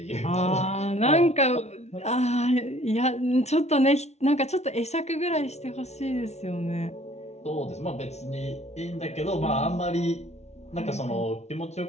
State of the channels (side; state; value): right; late; 0.32 ms